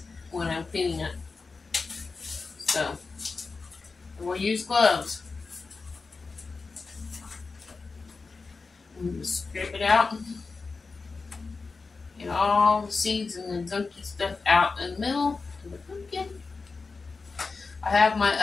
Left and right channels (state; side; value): quieter; right; 4.3 dB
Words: when I'm cleaning it. So, we'll use gloves. And just scrape it out. Get all the seeds and the gunky stuff out in the middle of the pumpkin. I have my